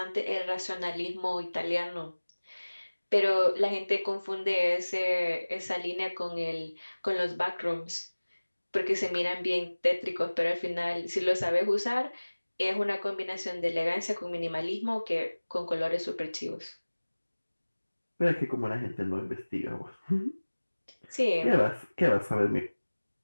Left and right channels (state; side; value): inverted; both; correlation -1.00